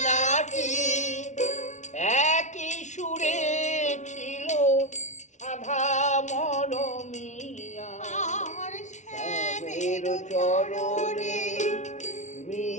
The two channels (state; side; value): late; right; 0.35 ms